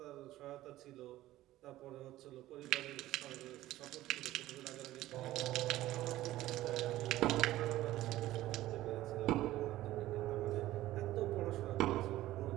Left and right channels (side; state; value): left; quieter; 15.4 dB